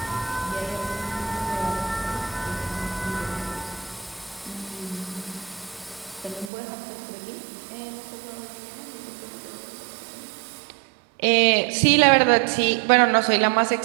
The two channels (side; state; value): left; drops out; at 6.5 s